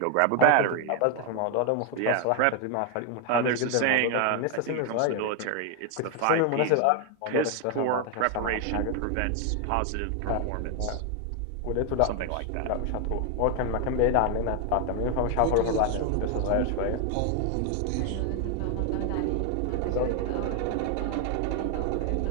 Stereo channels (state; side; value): different; both; correlation 0.01